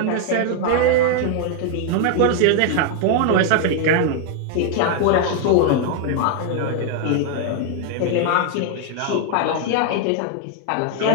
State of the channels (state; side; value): different; both; correlation 0.00